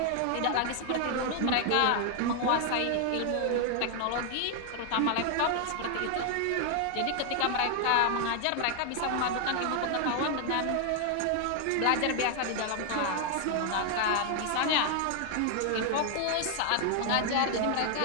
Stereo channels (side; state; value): both; different; correlation 0.00